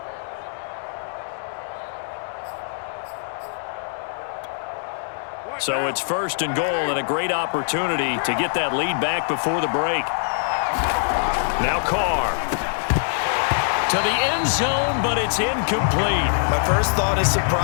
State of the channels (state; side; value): silent; right; 62 dB below the other